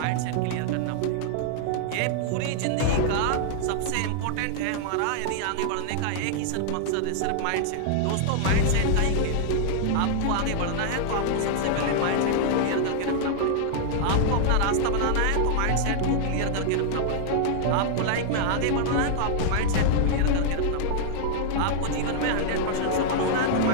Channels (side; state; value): both; different; correlation -0.01